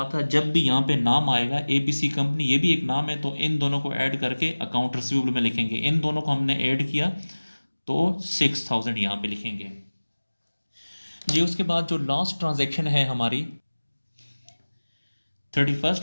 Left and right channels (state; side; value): inverted; both; correlation -1.00